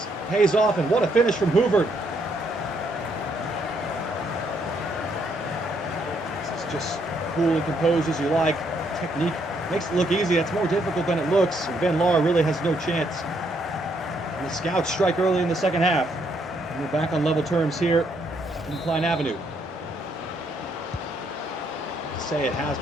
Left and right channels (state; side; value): normal; both; correlation 0.72